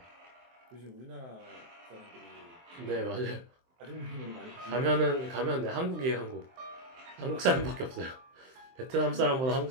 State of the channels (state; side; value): late; left; 23 ms